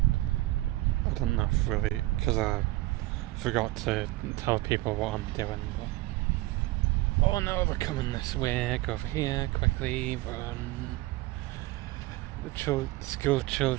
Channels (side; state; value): left; quieter; 18.8 dB